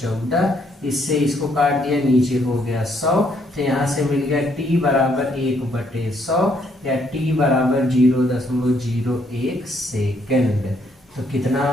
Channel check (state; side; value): normal; both; correlation 0.70